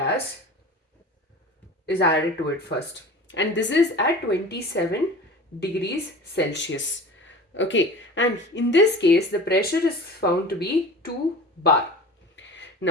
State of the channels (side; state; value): both; normal; correlation 0.37